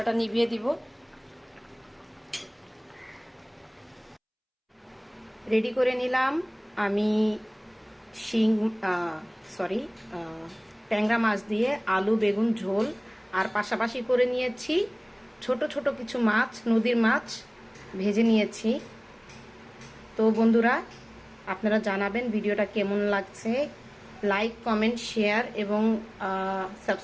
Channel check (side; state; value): both; identical; correlation 1.00